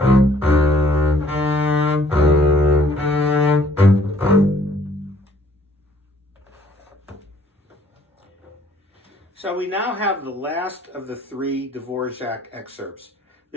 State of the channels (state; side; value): normal; both; correlation 0.60